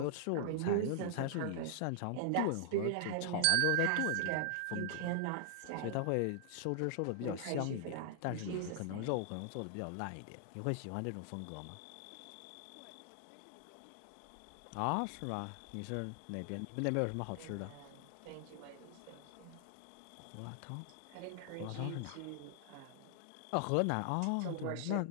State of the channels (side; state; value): both; different; correlation 0.00